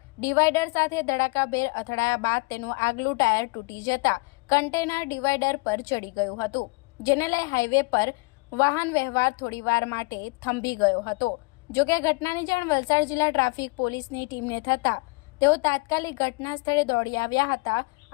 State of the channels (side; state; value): right; quieter; 29.5 dB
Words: ડિવાઈડર સાથે ધડાકાભેર અથડાયા બાદ તેનું આગલું ટાયર તૂટી જતા કન્ટેનર ડિવાઈડર પર ચડી ગયું હતું, જેને લઈ હાઈવે પર વાહન વ્યવહાર થોડીવાર માટે થંભી ગયો હતો। જોકે ઘટનાની જાણ વલસાડ જિલ્લા ટ્રાફિક પોલીસની ટીમને થતા તેઓ તાત્કાલિક ઘટના સ્થળે દોડી આવ્યા હતા